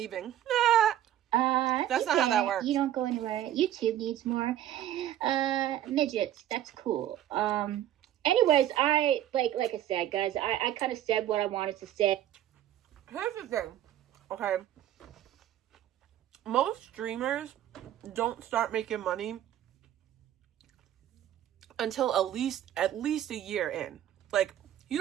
That's not how that works. You don't go anywhere. YouTube needs more midgets. That's cool. Anyways, like I said, guys, I kind of said what I wanted to say. Here's the thing, okay? Most streamers don't start making money until at least a year in. Like, you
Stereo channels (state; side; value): quieter; left; 11.9 dB